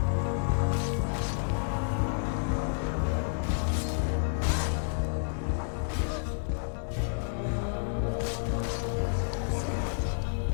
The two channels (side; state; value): right; silent; digital silence